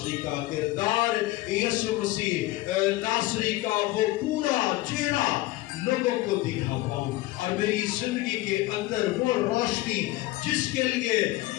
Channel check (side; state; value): right; quieter; 17.8 dB